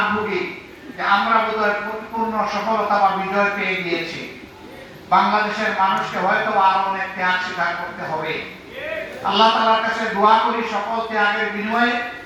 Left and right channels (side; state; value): both; identical; correlation 1.00